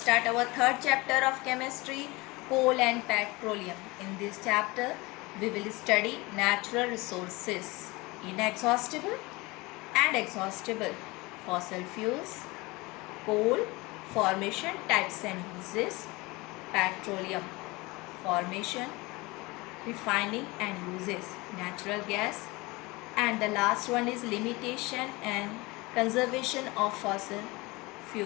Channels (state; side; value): quieter; right; 23.4 dB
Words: our third chapter of chemistry, coal and petroleum. In this chapter, we will study natural resources, inexhaustible and exhaustible, fossil fuels, coal, formation, types and uses, petroleum, formation, refining and uses, natural gas, and the last one is limitation and conservation of fossil